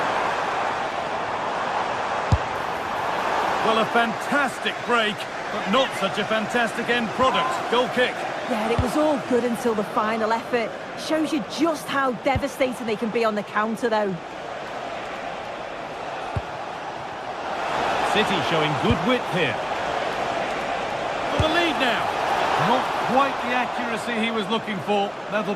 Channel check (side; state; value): both; identical; correlation 1.00